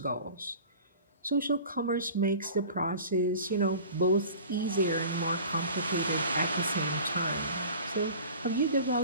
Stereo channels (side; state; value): both; inverted; correlation -0.42